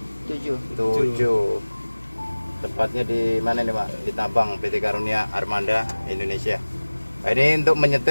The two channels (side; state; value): both; inverted; correlation -1.00